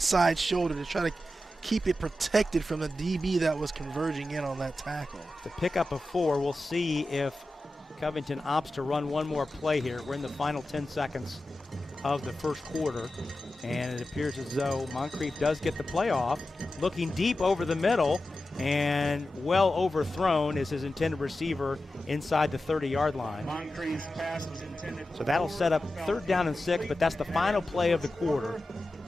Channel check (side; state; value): both; normal; correlation 0.93